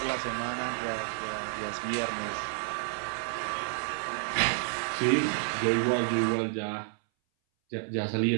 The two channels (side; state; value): left; silent; 58 dB below the other